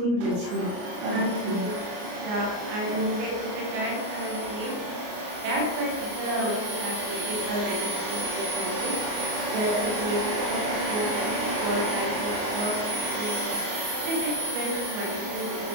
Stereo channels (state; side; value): late; left; 33 ms